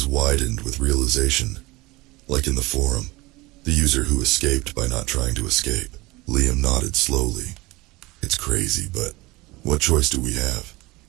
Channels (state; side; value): quieter; left; 21.9 dB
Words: widened with realization. Like in the forum, the user who escaped by not trying to escape. Liam nodded slowly. It's crazy, but what choice do we have?